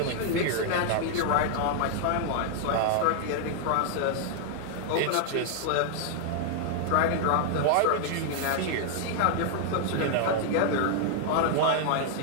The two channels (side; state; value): both; different; correlation 0.00